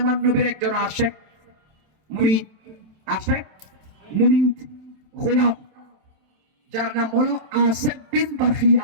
নবীর একজন আশেক মুরিদ, আশেক মুরিদ গোলাম, যার নাম হলো আসেফ বিন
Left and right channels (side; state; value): left; late; 27 ms